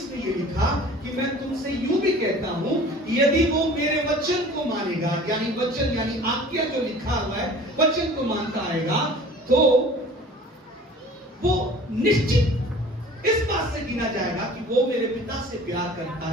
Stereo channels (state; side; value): normal; both; correlation 0.45